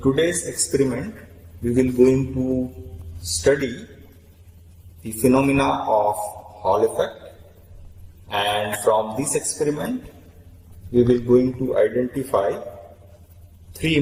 experiment, we will going to study the phenomena of Hall effect, and from this experiment, we will going to identify three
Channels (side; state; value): both; identical; correlation 1.00